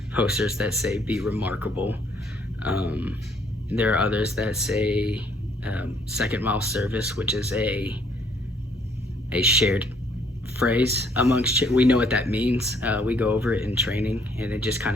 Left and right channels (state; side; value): normal; both; correlation 0.65